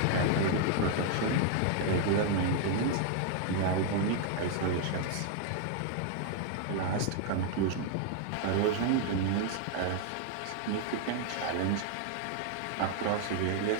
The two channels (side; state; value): both; different; correlation 0.00